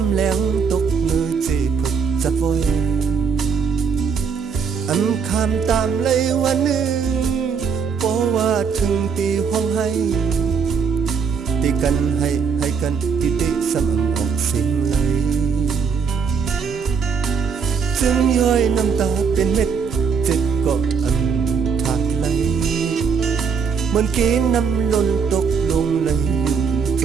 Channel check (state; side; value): quieter; left; 6.0 dB